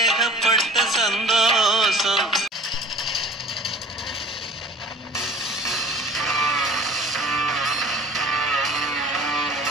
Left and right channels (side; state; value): both; normal; correlation 0.45